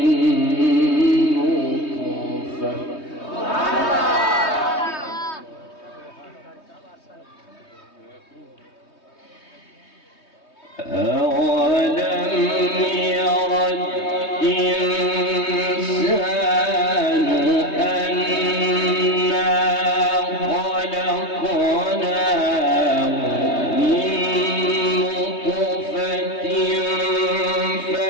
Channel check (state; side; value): late; right; 3.2 ms